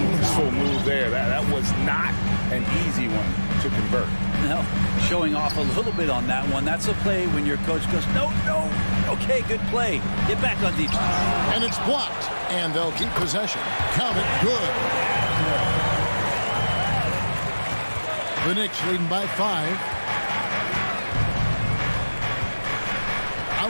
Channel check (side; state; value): both; inverted; correlation -1.00